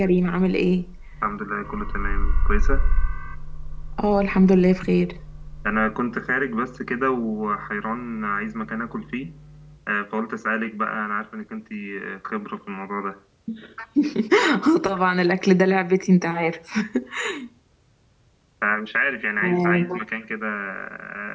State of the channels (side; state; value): both; identical; correlation 1.00